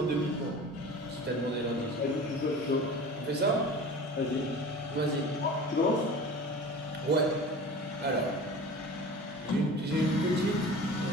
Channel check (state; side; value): normal; both; correlation 0.37